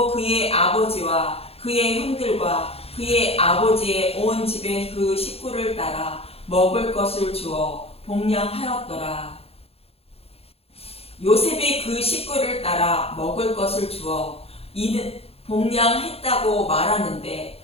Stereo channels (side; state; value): right; late; 0.29 ms